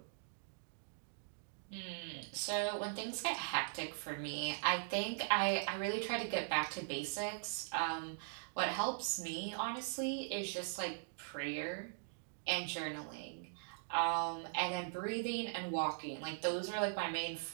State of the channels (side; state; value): left; silent; digital silence